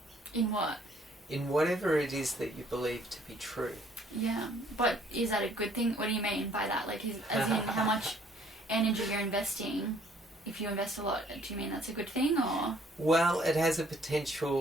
In what? In whatever it is that you believe to be true. Yeah, but is that a good thing? What do you mean by that? Like, as in how much energy you're investing? If you invest a lot, do you mean that's a good thing, or? Well, it has a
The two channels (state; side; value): normal; both; correlation 0.62